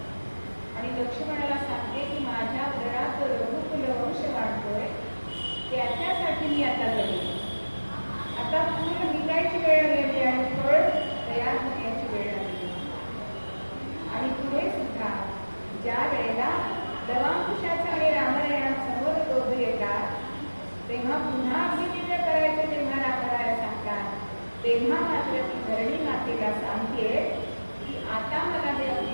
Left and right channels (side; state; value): both; inverted; correlation -1.00